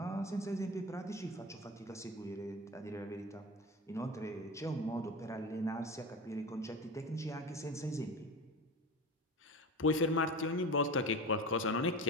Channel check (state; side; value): normal; both; correlation 0.28